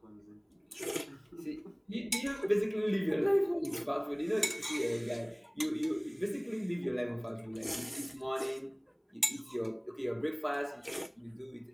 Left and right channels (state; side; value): identical; both; correlation 1.00